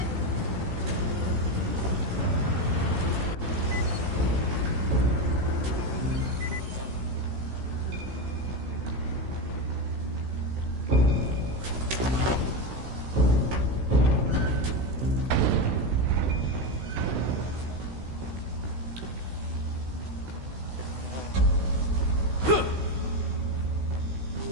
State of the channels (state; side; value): late; left; 16 ms